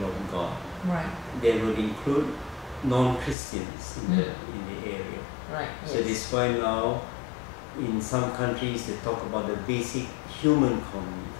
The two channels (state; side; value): drops out; right; at 3.4 s